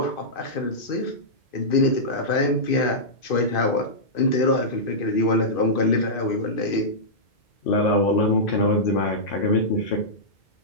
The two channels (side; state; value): right; late; 2.5 ms